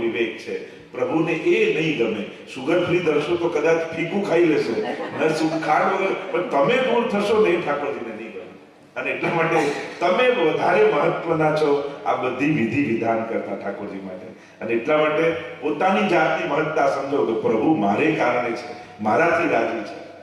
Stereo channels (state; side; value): identical; both; correlation 1.00